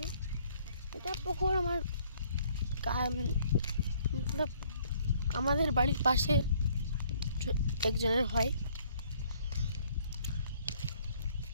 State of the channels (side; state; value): both; inverted; correlation -0.62